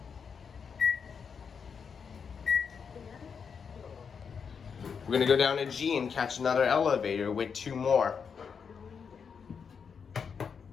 We're gonna go down to G and catch another elevator with 2 more.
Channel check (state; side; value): quieter; right; 6.3 dB